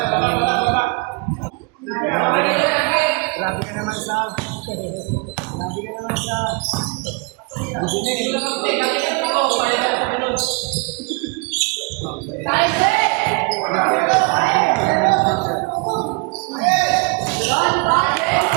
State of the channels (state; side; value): quieter; left; 30.2 dB